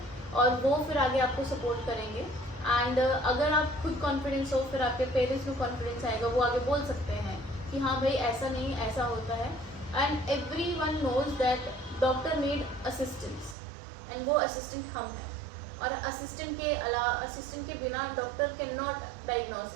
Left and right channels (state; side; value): drops out; left; at 13.6 s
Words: और वो फिर आगे आपको सपोर्ट करेंगे। एंड अगर आप खुद कॉन्फिडेंस हो फिर आपके पेरेंट्स में कॉन्फिडेंस आएगा, वो आगे बोल सकते हैं कि हाँ भाई ऐसा नहीं ऐसा होता है। And everyone knows that doctor need assistance and वो असिस्टेंट हम हैं, और असिस्टेंट के बिना doctor can not